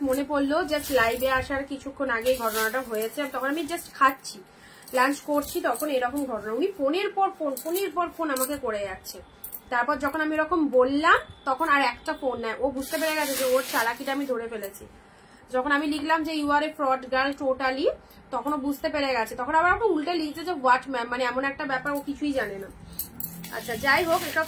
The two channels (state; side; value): identical; both; correlation 1.00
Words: মনে পড়লো, জাস্ট লাইভে আসার কিছুক্ষণ আগে ঘটনাটা হয়েছে, তখন আমি জাস্ট খাচ্ছি, লাঞ্চ করছি, তখন এরকম ঘটনা। উনি ফোনের পর ফোন আমাকে করে যাচ্ছে। তারপর যখন আমি এরকম বললাম তখন আর একটা ফোন নেয়, ও বুঝতে পেরে গেছে যে ওর চালাকিটা আমি ধরে ফেলেছি। যখন আমি লিখলাম যে you are a fraud girl totally, তখন ও বুঝতে পেরে গেছে। তখন আবার ওকে উল্টে লিখছে যে হোয়াট ম্যাম, মানে এমন একটা ব্যাপার ও কিছুই জানে না। আচ্ছা যাই হোক, এটা